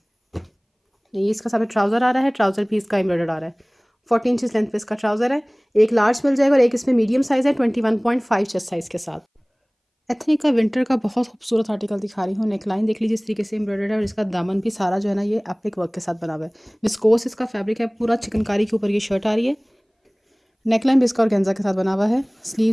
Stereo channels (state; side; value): identical; both; correlation 1.00